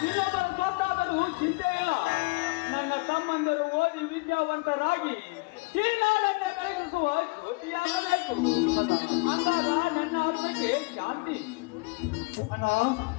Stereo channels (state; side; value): quieter; right; 28.3 dB